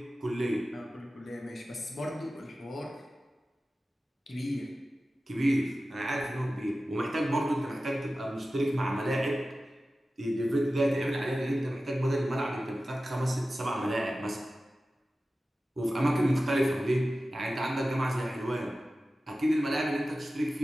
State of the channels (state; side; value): normal; both; correlation 0.95